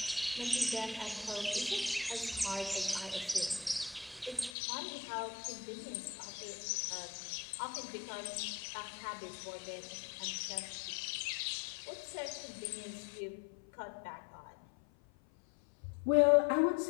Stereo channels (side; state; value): right; drops out; at 4.5 s